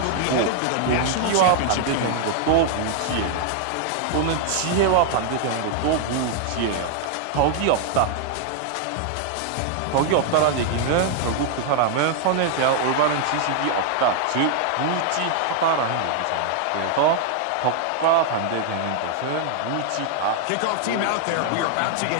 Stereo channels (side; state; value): both; different; correlation 0.00